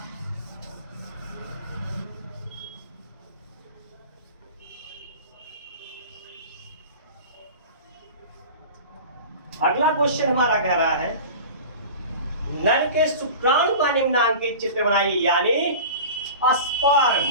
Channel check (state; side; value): inverted; both; correlation -0.36